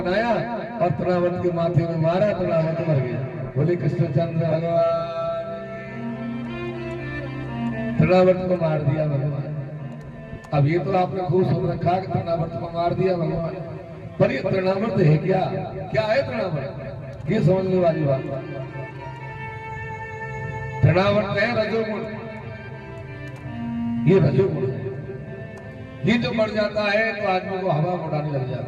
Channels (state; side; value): identical; both; correlation 1.00